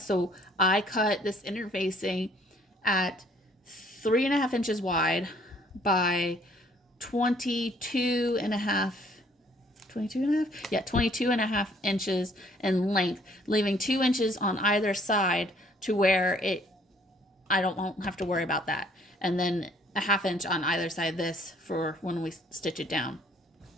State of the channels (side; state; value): both; normal; correlation 0.61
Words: I cut this interfacing at 3.5 inches wide by 22 and a half inches in length, leaving 2 inches on either side to where I won't have to worry about that. And then a 1/2 inch on either side of this for when we stitch it down.